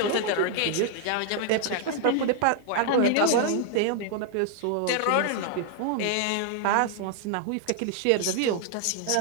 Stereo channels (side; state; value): both; different; correlation 0.00